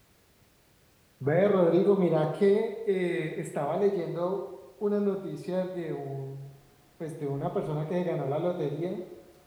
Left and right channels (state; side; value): identical; both; correlation 1.00